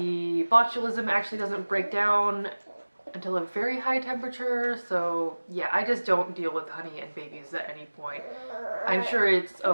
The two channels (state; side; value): inverted; both; correlation -1.00